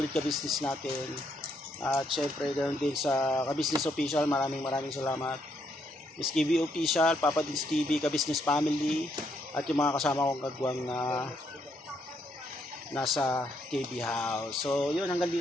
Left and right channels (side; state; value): both; normal; correlation 0.74